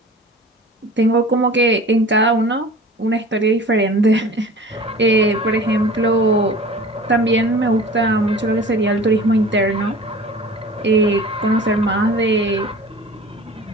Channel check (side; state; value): both; normal; correlation 0.42